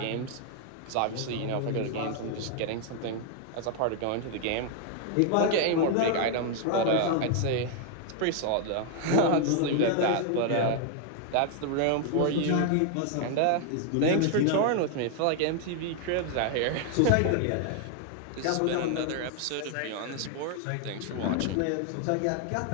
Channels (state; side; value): different; both; correlation 0.00